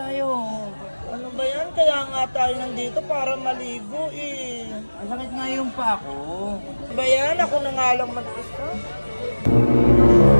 Ano ba yan? Kaya nga tayo nandito para maligo eh. Ang sakit nga yung paa ko. Ano ba yan? Ako na nga lang mag-isa.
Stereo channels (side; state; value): both; inverted; correlation -1.00